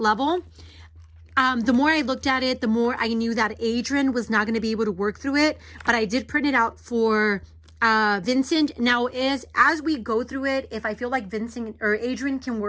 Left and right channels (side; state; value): both; identical; correlation 1.00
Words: The more I looked at it, the more I knew that Adrian was not going to be able to work through it. But I did print it out for Vincent. Now, as we go through it, if I feel like Vincent or Adrian can